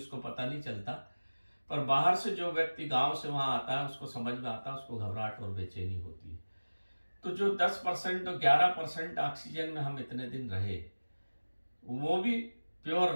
पता नहीं चलता। पर बाहर से जो व्यक्ति गांव से वहां आता है, उसको समझ में आता है, उसको घबराहट और बेचैनी होती है। तो जो 10% और 11% ऑक्सीजन में हम इतने दिन रहे, वो भी प्योर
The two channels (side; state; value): both; inverted; correlation -1.00